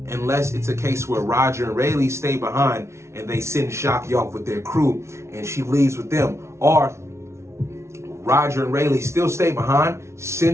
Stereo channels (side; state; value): left; late; 0.13 ms